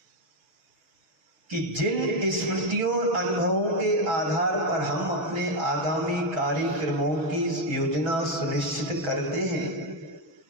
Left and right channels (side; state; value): left; late; 6.1 ms